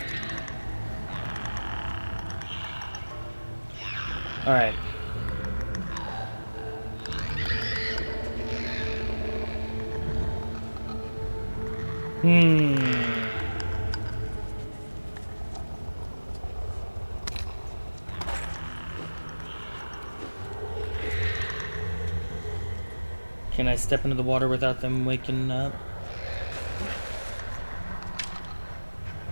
Alright. Can I step into the water without them waking up?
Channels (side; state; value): both; inverted; correlation -1.00